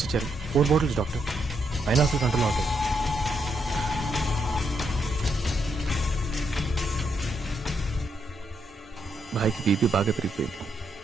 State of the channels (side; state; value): both; normal; correlation 0.78